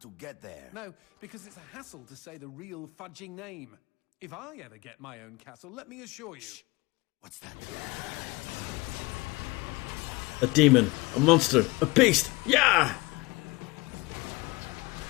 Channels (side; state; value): right; quieter; 23.6 dB